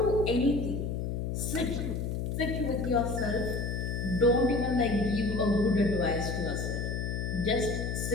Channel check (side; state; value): left; noise; hum, 2 dB below the sound